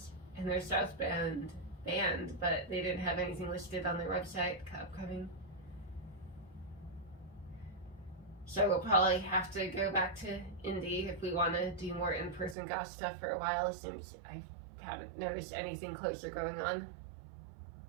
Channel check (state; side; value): drops out; left; at 12.6 s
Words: And there's South Bend band, but they didn't have anything listed on their website upcoming. So we'll probably have to go back to Indy if we want to do more in-person goth stuff for a while, since I haven't noticed anything closer going on.